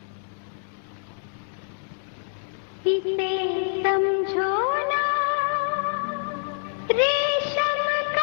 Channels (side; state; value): right; silent; digital silence